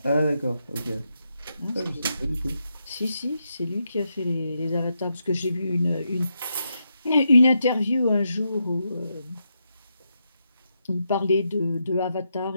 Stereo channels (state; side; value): inverted; both; correlation -0.83